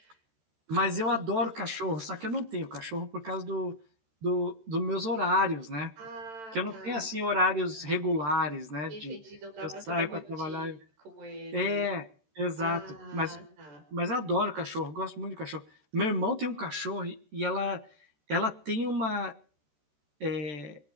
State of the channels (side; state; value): left; late; 13 ms